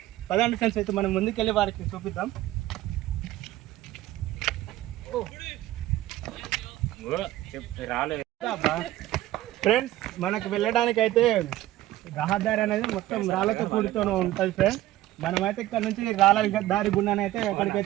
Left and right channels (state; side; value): quieter; left; 15.4 dB